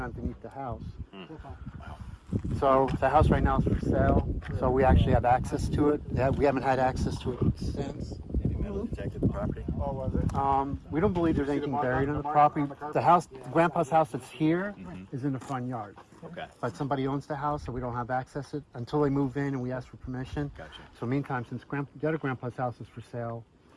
underneath the house. So the house right now is for sale, so we actually have access to it. Yeah, we haven't had access to it since. Have you metal detected the property. Oh, was it? We don't believe there's anything buried on the property. The house, Grandpa's house that's here, is in the front yard. Okay. But somebody owns the house, so we don't have access to it until they move in and we ask for permission. Gotcha. So meantime, since the other Grandpa's house is for sale,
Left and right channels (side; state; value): both; identical; correlation 1.00